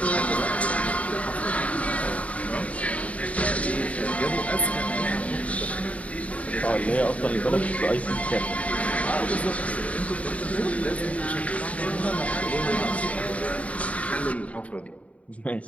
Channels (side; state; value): right; late; 0.067 ms